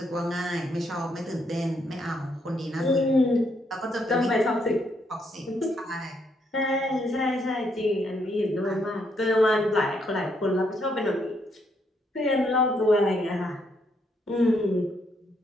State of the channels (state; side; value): normal; both; correlation 0.74